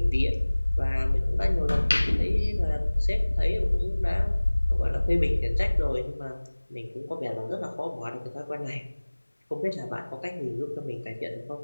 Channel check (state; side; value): inverted; both; correlation -1.00